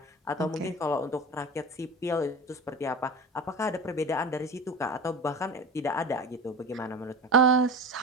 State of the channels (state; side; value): normal; both; correlation 0.31